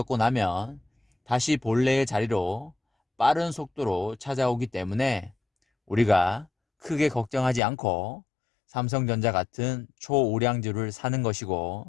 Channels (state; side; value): drops out; right; at 7.6 s